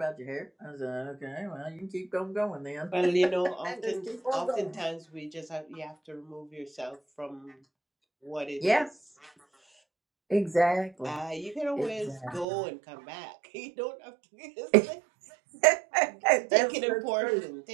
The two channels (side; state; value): left; drops out; at 12.5 s